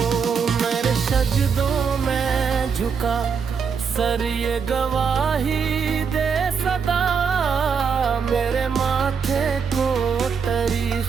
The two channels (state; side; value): quieter; left; 6.2 dB